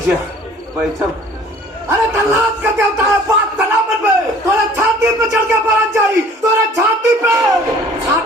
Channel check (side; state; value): both; normal; correlation 0.52